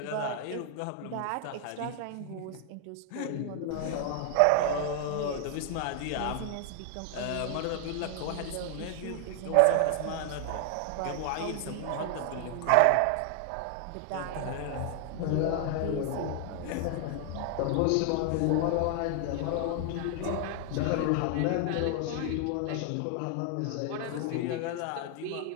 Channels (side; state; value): both; different; correlation 0.00